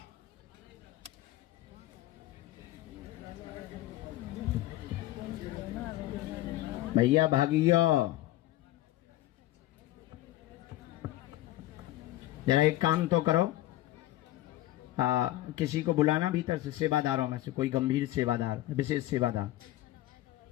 भैया भागियो, जरा एक काम तो करो, किसी को बुलाना भीतर से, सेवादारों में से कोई गंभीर सेवादार, विशेष सेवादार।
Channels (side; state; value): right; quieter; 15.9 dB